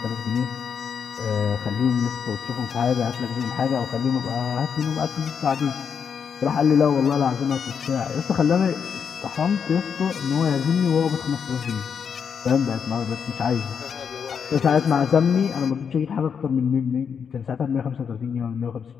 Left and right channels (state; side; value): quieter; right; 6.9 dB